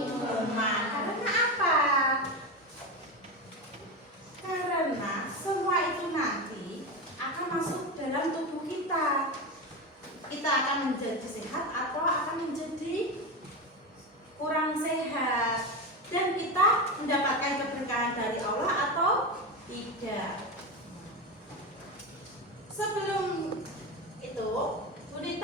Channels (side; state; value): both; normal; correlation 0.18